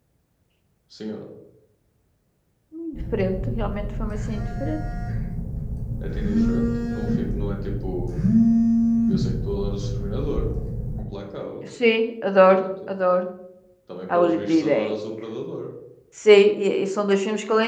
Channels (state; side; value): identical; both; correlation 1.00